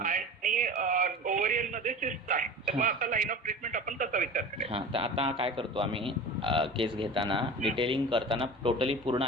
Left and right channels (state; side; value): normal; both; correlation 0.36